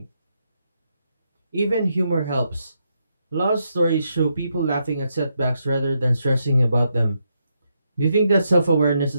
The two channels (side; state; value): both; inverted; correlation -0.80